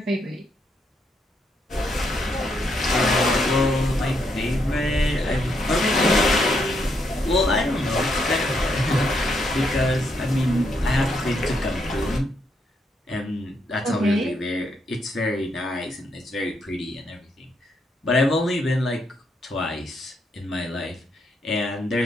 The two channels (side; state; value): both; normal; correlation 0.77